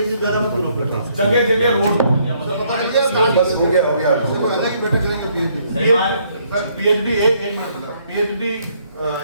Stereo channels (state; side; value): inverted; both; correlation -0.68